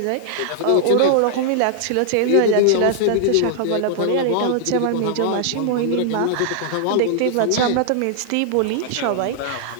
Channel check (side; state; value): both; different; correlation -0.01